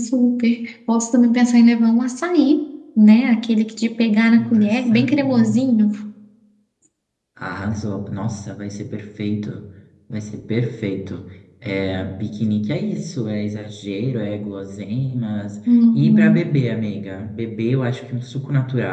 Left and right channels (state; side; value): identical; both; correlation 1.00